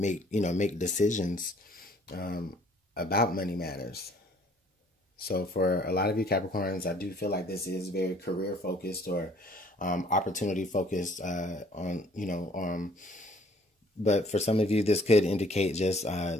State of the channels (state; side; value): normal; both; correlation 0.58